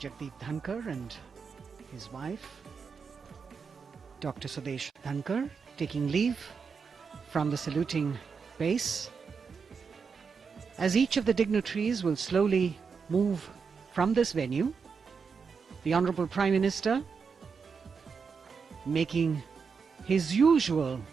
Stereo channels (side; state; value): left; quieter; 5.6 dB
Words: Jagdeep Dhankar and his wife Dr. Sudesh Dhankar taking leave from the saluting base. As each of the dignitaries will slowly move from this venue, the Honorable Prime Minister making his usual